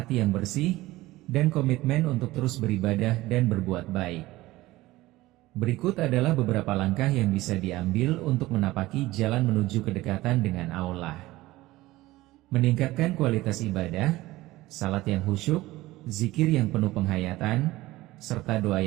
yang bersih, dan komitmen untuk terus beribadah dan berbuat baik. Berikut adalah beberapa langkah yang bisa diambil untuk menapaki jalan menuju kedekatan dengan Allah. Meningkatkan kualitas ibadah, salat yang khusyuk, zikir yang penuh penghayatan, serta doa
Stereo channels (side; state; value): left; quieter; 18.1 dB